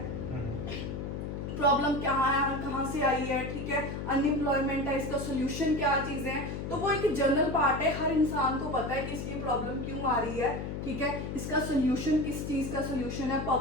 प्रॉब्लम क्या है, कहाँ से आई है, ठीक है, अनएम्प्लॉयमेंट है, इसका सोल्यूशन क्या चीज़ें हैं। तो वो एक जनरल पार्ट है, हर इंसान को पता है कि इसकी प्रॉब्लम क्यों आ रही है, ठीक है, इसका सोल्यूशन किस चीज़ का सोल्यूशन है,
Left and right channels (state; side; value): noise; left; hum, 5 dB below the sound